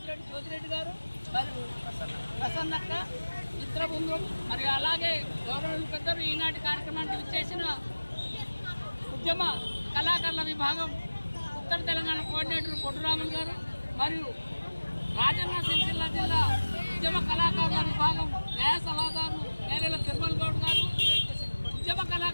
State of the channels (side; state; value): both; inverted; correlation -1.00